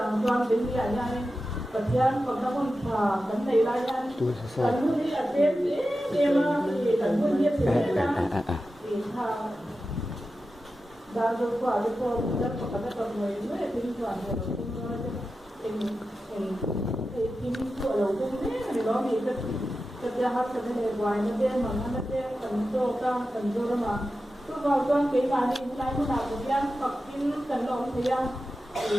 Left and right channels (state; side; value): normal; both; correlation 0.92